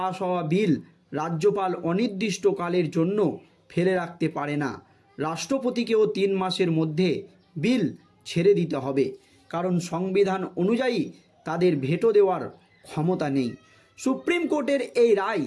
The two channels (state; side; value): identical; both; correlation 1.00